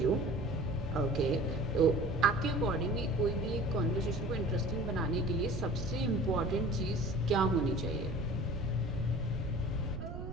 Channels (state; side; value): noise; right; rumble, 8 dB below the sound